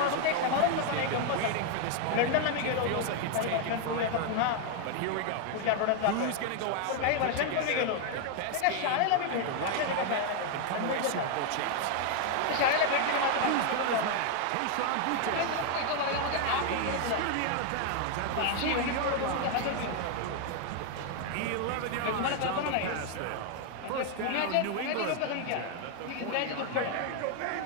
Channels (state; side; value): different; both; correlation 0.00